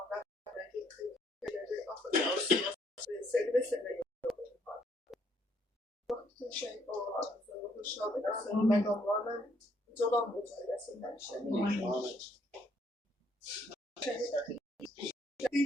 kıymetleri affedersiniz. Seni ve seni yollar. Bütün şey olarak konuşalım. Senin megamlarla colan bu söylesinden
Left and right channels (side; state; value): both; normal; correlation 0.69